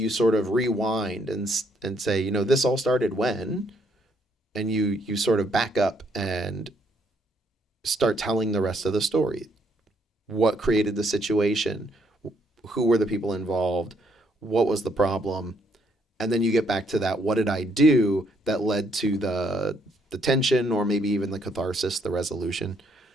sort of rewind and say, this all started when, and you sort of back up and start telling the rest of the story. What created the situation? Who were the people involved? What was the problem? And then you get back to that, what did I do that led to the tension, or maybe even the catharsis, the resolution.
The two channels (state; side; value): normal; both; correlation 0.71